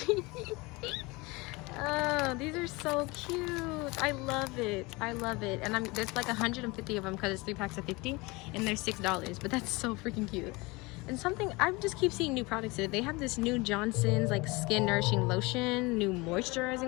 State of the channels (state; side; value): quieter; right; 24.4 dB